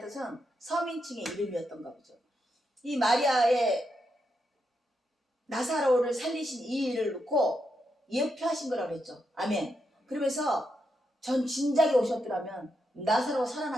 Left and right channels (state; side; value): normal; both; correlation 0.83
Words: 뜻은 서민층의 이름이었던가 보죠. 이 마리아의 나사로를 살리신 이 일을 놓고 예표하신 거라고 그랬죠. 아멘. 그러면서 전 진작에 오셨더라면 나사로가